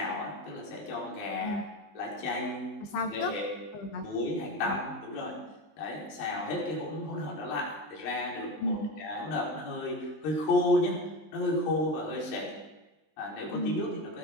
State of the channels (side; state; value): right; late; 19 ms